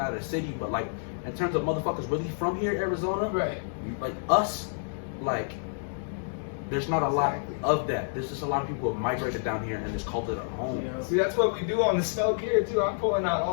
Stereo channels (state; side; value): silent; right; digital silence